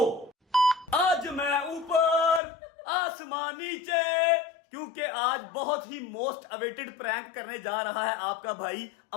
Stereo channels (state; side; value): drops out; right; at 2.4 s